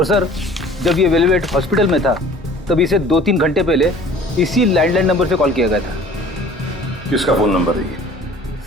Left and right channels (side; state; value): both; normal; correlation 0.49